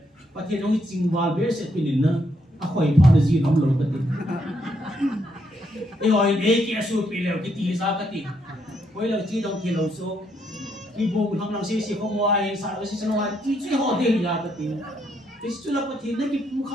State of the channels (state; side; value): normal; both; correlation 0.75